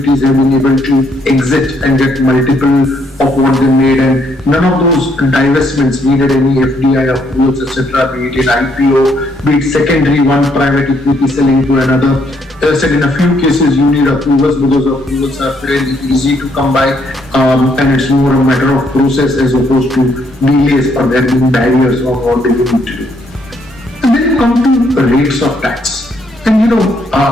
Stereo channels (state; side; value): normal; both; correlation 0.72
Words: have been able to exit and get multiple of what they made, and none of those divestments needed any FDI approvals, etc., be it in IPO, be it secondary, one private equity selling to another. As I said, in a few cases you need approvals because approvals are fairly easy to come by, and it's more a matter of process as opposed to delays or there being barriers on what they need to do. And then you come to rates of tax. And